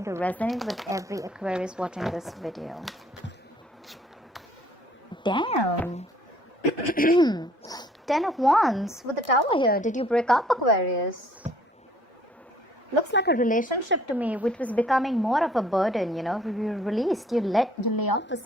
to resonate with every Aquarius watching this video. Damn! 10 of Wands with the Tower here. Did you break up, Aquarius? Looks like a relationship to me, which was becoming more of a burden. You released, you lay off the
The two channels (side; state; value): both; normal; correlation 0.59